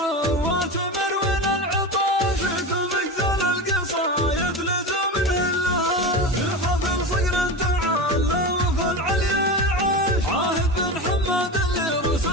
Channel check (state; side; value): normal; both; correlation 0.23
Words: مروين العطاش كل مقزل القصايد لزم نهلها. في حفل صقر تعالى وفي العليا عاش عاهد بن حماد اللي روس